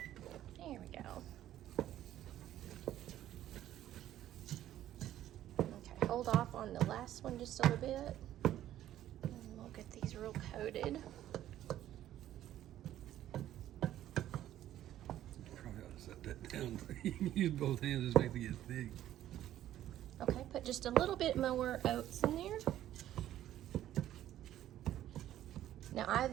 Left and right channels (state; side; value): quieter; left; 12.5 dB